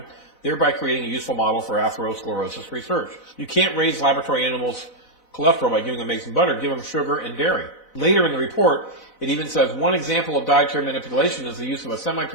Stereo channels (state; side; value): late; right; 4.0 ms